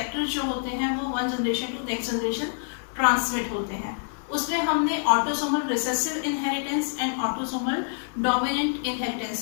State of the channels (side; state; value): right; silent; 61 dB below the other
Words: जो होते हैं वो one generation to next generation transmit होते हैं। उसमें हमने autosomal recessive inheritance and autosomal dominant